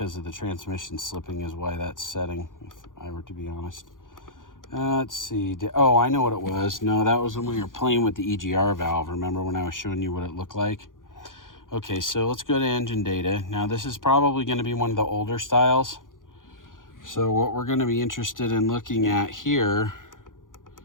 of the transmission slipping is why that's setting, if I were to be honest. Let's see. Oh, I know what it was. No, that was when we were playing with the EGR valve. Remember when I was showing you what it looked like? Okay, so let's go to engine data. Now, this is probably going to be one of the older styles. So what we're going to be interested in looking at here,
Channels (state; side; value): late; right; 0.89 ms